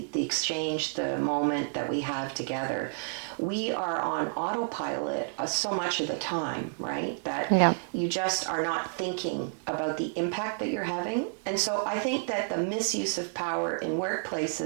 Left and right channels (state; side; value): silent; left; digital silence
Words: the exchange, the moment that we have together. We are on autopilot so much of the time, right? That you just are not thinking about the impact that you're having. And so I think that the misuse of power in